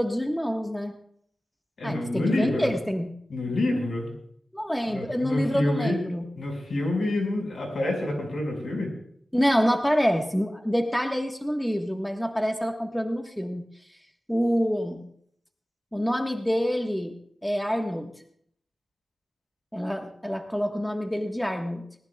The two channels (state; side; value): normal; both; correlation 0.96